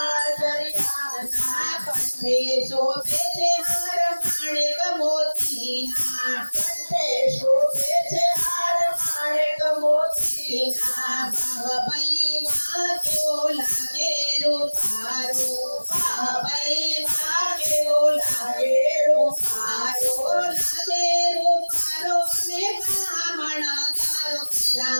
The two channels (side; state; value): both; inverted; correlation -1.00